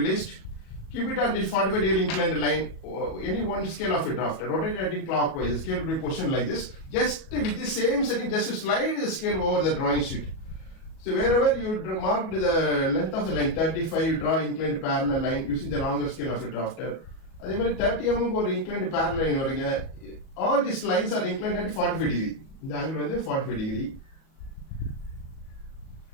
Keep it on the 45 degree inclined line. Any one scale of a draft. Rotate it anti-clockwise. The scale will be positioned like this. Just with the same setting, just to slide the scale over the drawing sheet. So wherever you mark the length of the line 35, you draw inclined parallel line using the longer scale of a drafter. அதே மாதிரி 30 mm ஒரு inclined parallel line வருங்க. All these lines are inclined at 45 degree. இந்த angle வந்து 45 degree.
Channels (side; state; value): right; late; 37 ms